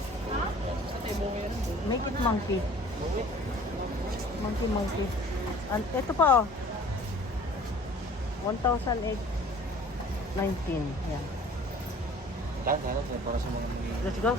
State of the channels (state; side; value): normal; both; correlation 0.49